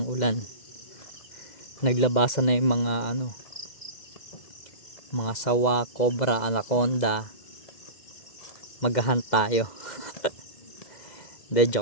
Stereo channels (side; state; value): right; late; 2.0 ms